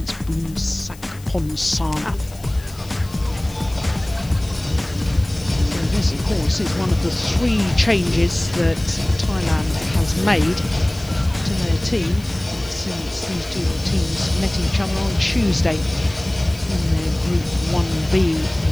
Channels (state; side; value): noise; left; hiss, 21 dB below the sound